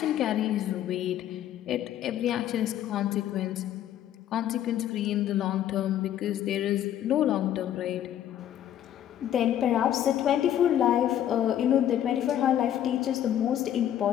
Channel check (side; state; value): right; quieter; 11.1 dB